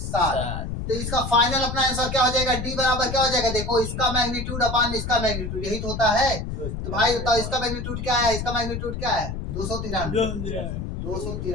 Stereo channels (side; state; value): left; noise; rumble, 5 dB below the sound